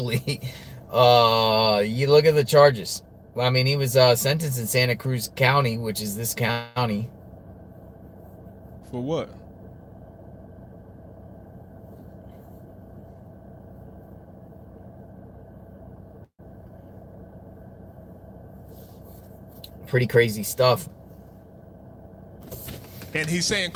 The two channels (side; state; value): both; identical; correlation 1.00